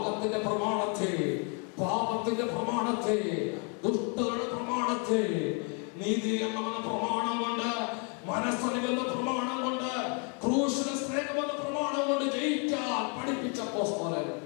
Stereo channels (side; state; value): right; quieter; 37.4 dB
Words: പ്രമാണത്തെ, പാപത്തിന്റെ പ്രമാണത്തെ, ദുഷ്ടതയുടെ പ്രമാണത്തെ, നീതി എന്ന പ്രമാണം കൊണ്ട്, മനസ്സറിവെന്ന പ്രമാണം കൊണ്ട്, ക്രൂശിലെ സ്നേഹമെന്ന പ്രമാണം കൊണ്ട് ജയിക്കാൻ പഠിപ്പിച്ച അപ്പോസ്തലൻ